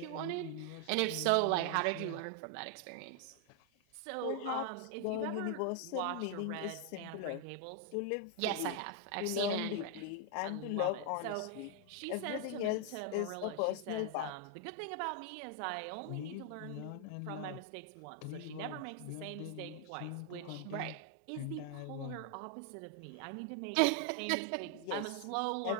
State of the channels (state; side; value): different; both; correlation 0.00